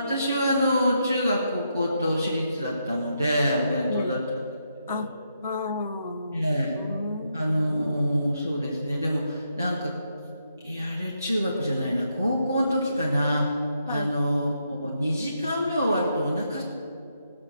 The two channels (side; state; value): both; inverted; correlation -0.80